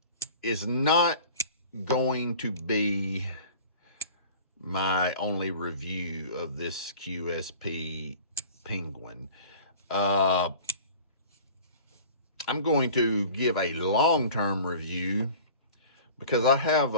is not going to be my only review of this QSP Penguin. I'm going to give a long-term review because I have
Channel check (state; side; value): inverted; both; correlation -0.43